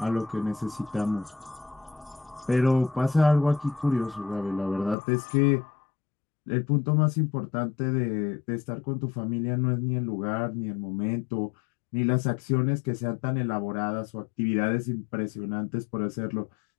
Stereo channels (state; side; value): drops out; right; at 5.0 s